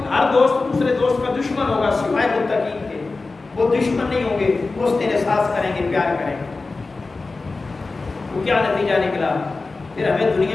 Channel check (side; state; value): right; quieter; 3.7 dB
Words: ہر دوست دوسرے دوست کا دشمن ہوگا سوائے متقین کے، وہ دشمن نہیں ہوں گے، وہ اس دن احساس کریں گے، پیار کریں گے۔ وہ کیا نتیجہ نکلا؟ پھر ہمیں